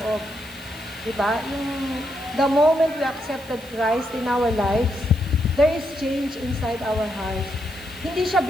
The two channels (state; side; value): noise; right; hiss, 22 dB below the sound